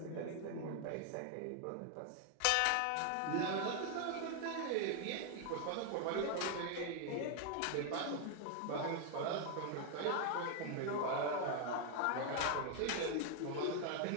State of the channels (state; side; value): different; both; correlation 0.00